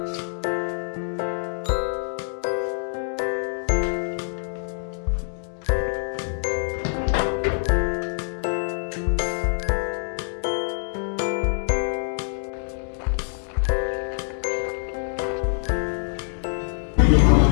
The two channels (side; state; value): right; silent; digital silence